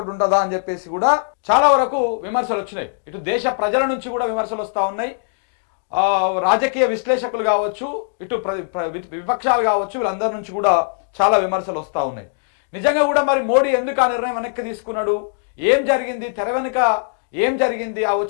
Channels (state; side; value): silent; right; digital silence